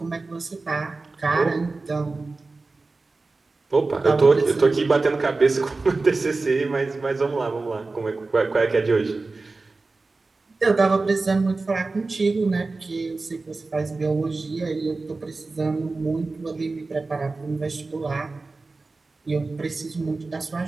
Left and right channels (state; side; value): quieter; left; 3.6 dB